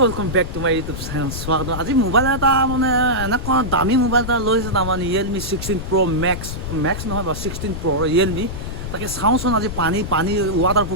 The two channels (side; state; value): left; noise; rumble, 7 dB below the sound